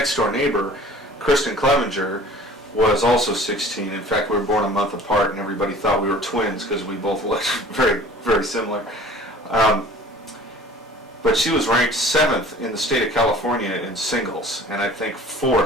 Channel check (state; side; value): normal; both; correlation 0.47